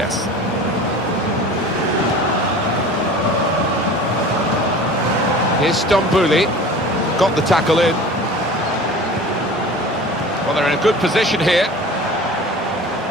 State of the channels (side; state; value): both; normal; correlation 0.40